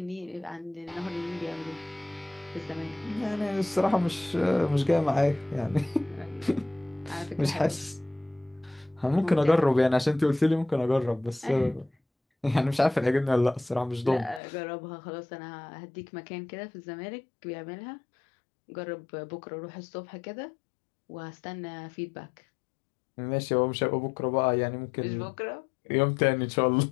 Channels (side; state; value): right; drops out; at 14.4 s